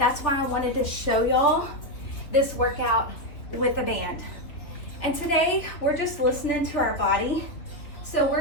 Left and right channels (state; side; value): late; right; 3.4 ms